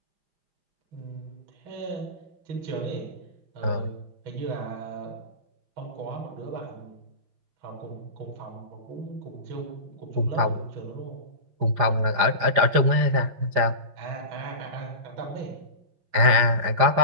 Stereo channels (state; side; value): late; left; 5.0 ms